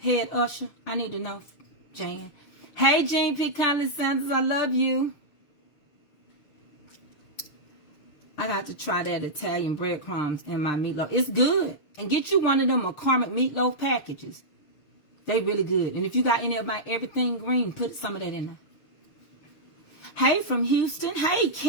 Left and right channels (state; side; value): late; right; 6.7 ms